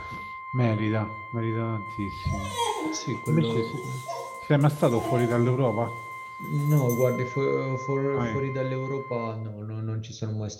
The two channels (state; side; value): identical; both; correlation 1.00